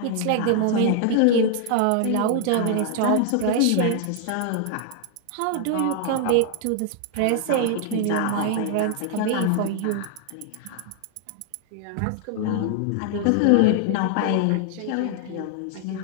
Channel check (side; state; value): both; different; correlation 0.00